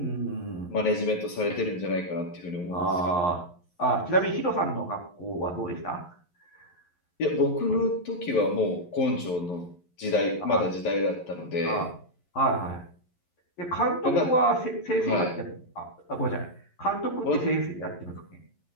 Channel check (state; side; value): late; right; 11 ms